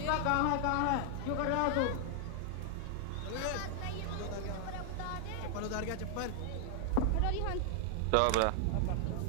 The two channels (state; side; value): different; both; correlation 0.00